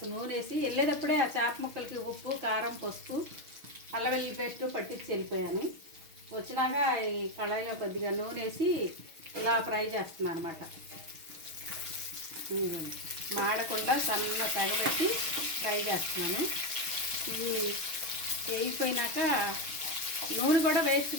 నూనె వేసి వెళ్ళేటప్పుడే ఆ చేప ముక్కలకి ఉప్పు, కారం, పసుపు, అల్లం వెల్లుల్లి పేస్ట్ పట్టించి వెళ్ళిపోయాను. వచ్చినాక ఈ కళాయిలో కొద్దిగా నూనె వేసి ఇలా ఫ్రై చేస్తున్నాను అనమాట. మాడకుండా సన్న తగబెట్టి ఫ్రై చేస్తున్నాను. ఇది వేగిపోయినాక నూనె కూడా వేస్ట్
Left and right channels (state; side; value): late; left; 6.3 ms